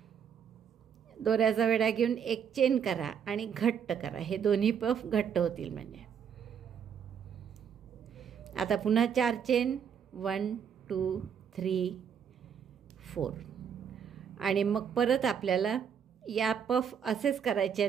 दोऱ्याचा वेढा घेऊन एक चेन करा आणि घट्ट करा. हे दोन्ही पफ घट्ट होतील म्हणजे. आता पुन्हा 4 चेन 1 2 3 4. आणि मग परत आपल्याला या पफ असेच करायचे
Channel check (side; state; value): left; quieter; 7.7 dB